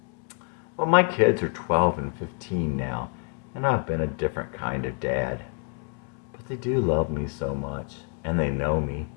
Well, my kids are 12 and 15 now, and I've been a different kind of dad. But they do love me so much, and they know me.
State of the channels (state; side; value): quieter; right; 38.6 dB